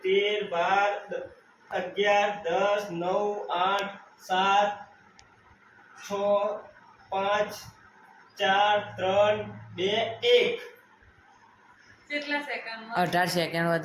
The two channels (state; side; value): identical; both; correlation 1.00